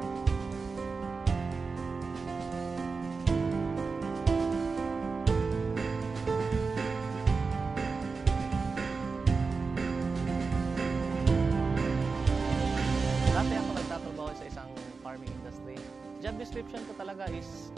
Job description ko talaga is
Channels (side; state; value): left; quieter; 4.5 dB